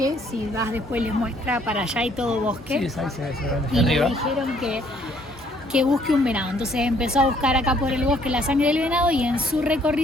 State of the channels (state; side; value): normal; both; correlation 0.64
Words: si vas después les muestra, para allá hay todo bosque. Sí, ahí se ve Y le arriba. dijeron que busque un venado. Entonces empezó a buscar acá por el bosque la sangre del venado y en su